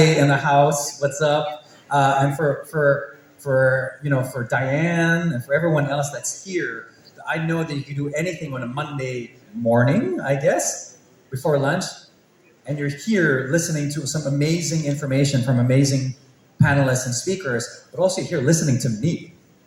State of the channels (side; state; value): both; identical; correlation 1.00